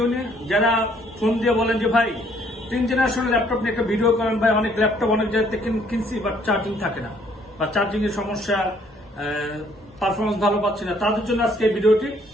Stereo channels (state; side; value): normal; both; correlation 0.64